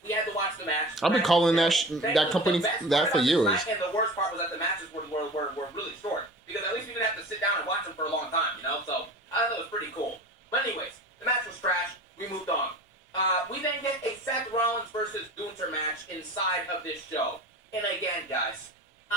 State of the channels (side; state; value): both; normal; correlation 0.37